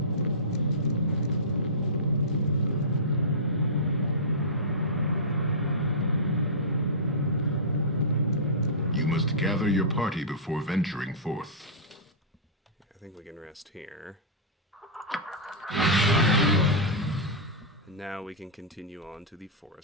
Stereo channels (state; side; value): normal; both; correlation -0.17